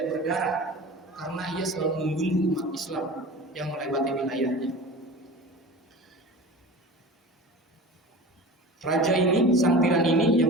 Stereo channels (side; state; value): both; normal; correlation 0.36